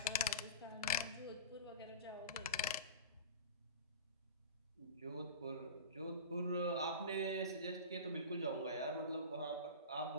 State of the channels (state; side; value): inverted; both; correlation -0.30